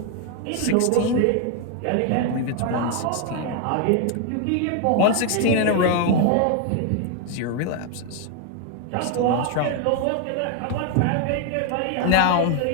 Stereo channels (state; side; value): different; both; correlation 0.01